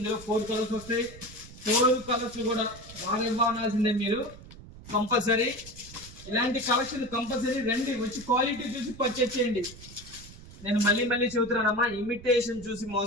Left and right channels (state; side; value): noise; right; rumble, 17 dB below the sound